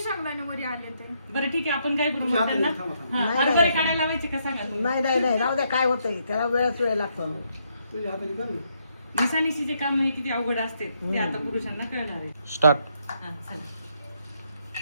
शेंगदाणे वर आले ते. बरं ठीक आहे आपण काय करू थांबा, त्यांना थांबा, थांबा. हा, हरभरे काढायला लावायचे का सांगा तुम्ही? नाही नाही नाही राहू द्या काय होतंय त्याला वेळ लागतो. तुझ्या हाताने कर ना. निसानिशीचे काम हे किती अवघड असते ते आता पुरुषांना कळणार आहे. स्टार्ट. हा, चला.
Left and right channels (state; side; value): inverted; both; correlation -0.75